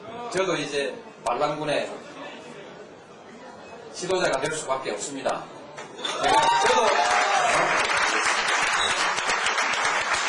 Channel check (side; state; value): both; identical; correlation 1.00